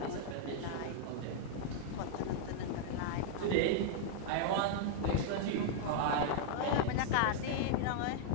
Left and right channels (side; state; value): both; different; correlation -0.01